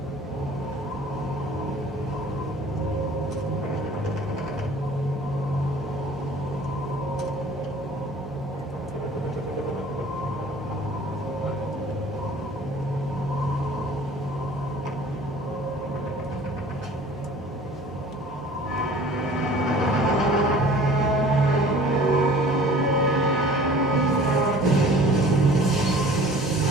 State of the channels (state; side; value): normal; both; correlation 0.48